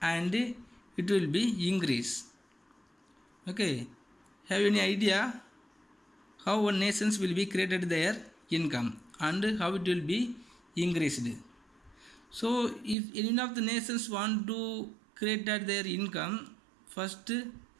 and it will be increased. Okay, have any idea how one nations will be created their income and how it will be increased? So if any of the nations want to create their income, first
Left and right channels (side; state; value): left; drops out; at 13.0 s